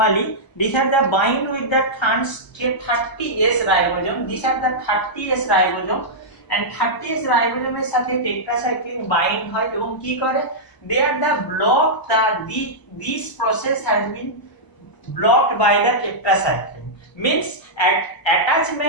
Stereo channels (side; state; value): right; late; 1.0 ms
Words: these are the bind with the 30S ribosome. These are the 30S ribosome, and 30S ribosome এর সাথে tetracycline bind হয় এবং কি করে, they are the block this process has been blocked by the tetracycline, means